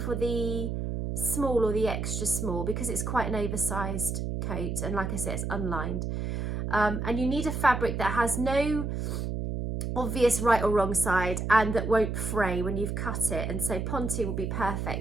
the small or the extra small because it's quite an oversized coat, and like I said, it's unlined. And you need a fabric that has no obvious right or wrong side and that won't fray when you've cut it, and so Ponte will be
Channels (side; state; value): right; noise; hum, 2 dB below the sound